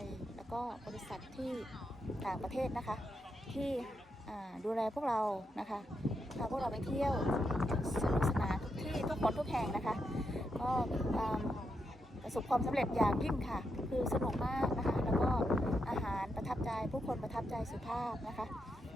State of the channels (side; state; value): both; normal; correlation 0.83